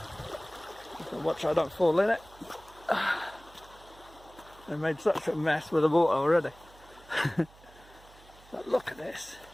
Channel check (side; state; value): right; noise; hum, 24 dB below the sound